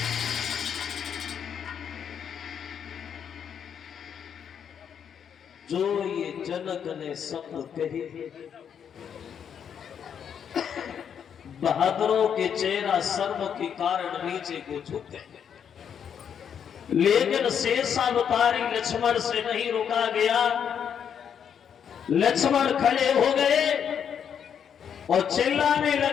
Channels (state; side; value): quieter; right; 8.0 dB